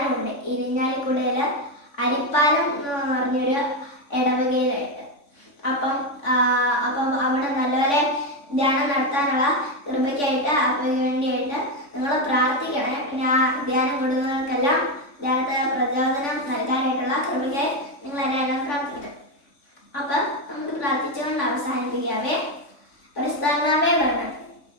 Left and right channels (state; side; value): late; right; 3.5 ms